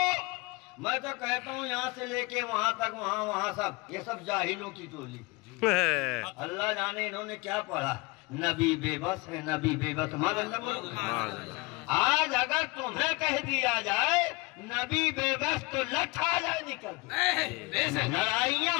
میں تو کہتا ہوں یہاں سے لے کے وہاں تک وہاں سب یہ سب جاہلوں کی ٹولی اللہ جانے انہوں نے کیا پڑھا نبی بے بس ہے نبی بے بس آج اگر تمہیں کہہ دیا جائے نبی بے بس تو لٹھ آ جائے نکل بے شک لڑائیاں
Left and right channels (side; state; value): right; quieter; 25.4 dB